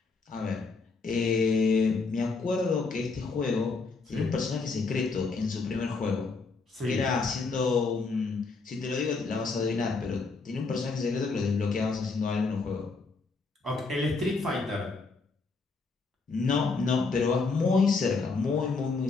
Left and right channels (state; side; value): quieter; right; 4.2 dB